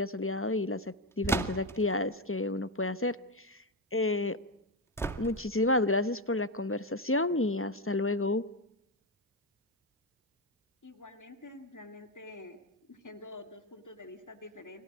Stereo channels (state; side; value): normal; both; correlation 0.10